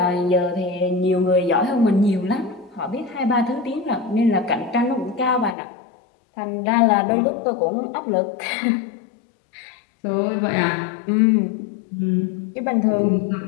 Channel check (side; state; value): right; drops out; at 5.6 s